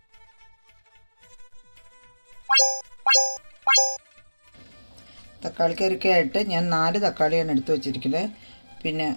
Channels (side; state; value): both; inverted; correlation -1.00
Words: തക്കാളിക്കറിക്കായിട്ട് ഞാൻ 4 തക്കാളിയാണ് എടുത്ത് വെച്ചിരിക്കുന്നത്. പിന്നെ